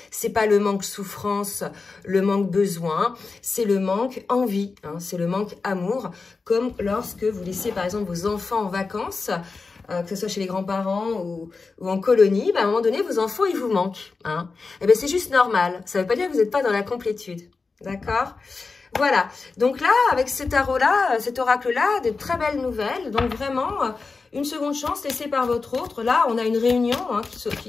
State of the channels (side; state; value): right; quieter; 4.3 dB